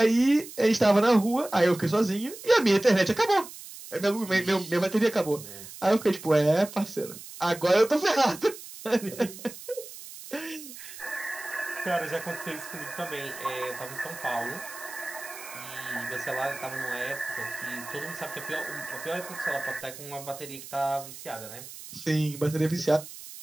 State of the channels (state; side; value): noise; right; hiss, 14 dB below the sound